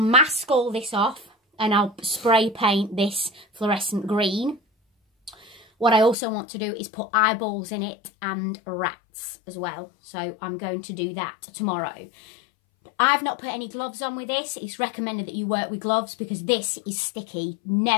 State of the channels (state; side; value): drops out; right; at 6.2 s